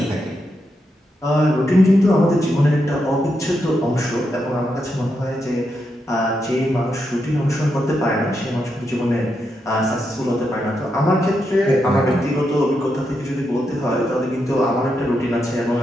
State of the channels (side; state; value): both; normal; correlation 0.83